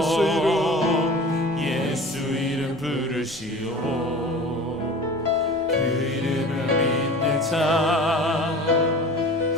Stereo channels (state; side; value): noise; left; rumble, 27 dB below the sound